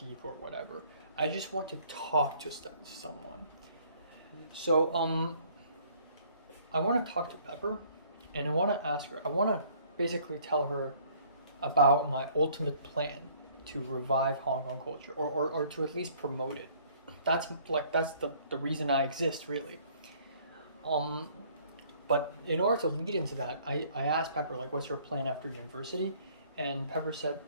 or whatever. I just want to talk to someone. So I want to talk to Pepper, and I want to ask her. I want to basically tell her about my ultimate plan to revive Hong Kong culture, or to at least promote it. That's the reason I exist, really. But in order to lead into that, I asked Pepper, like, what's your plan after university? And Pepper said,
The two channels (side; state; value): both; inverted; correlation -0.58